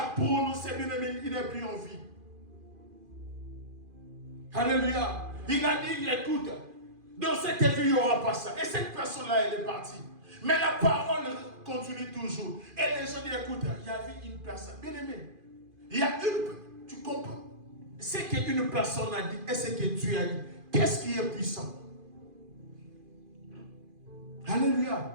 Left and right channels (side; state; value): left; late; 2.5 ms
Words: prononcé, il n'est plus en vie. Alléluia. Il a dit, écoute, dans cette vie, il n'y aura pas ça. Et cette personne-là, elle est partie. Mais la parole continue toujours. Et les gens disent, écoute, il y avait une personne. Bien aimé, il y a une, tu comprends? Ce qu'une personne a dit et ce que Dieu a dit. Qu'est-ce qui est puissant?